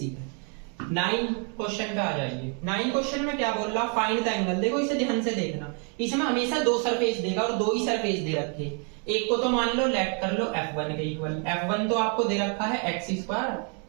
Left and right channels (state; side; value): quieter; left; 39.0 dB